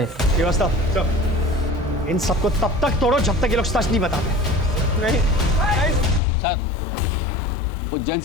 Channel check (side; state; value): right; drops out; at 6.2 s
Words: व्यवस्था इन सबको तब तक तोड़ो जब तक ये लोग सच नहीं बताते। नहीं सर, उज्जैन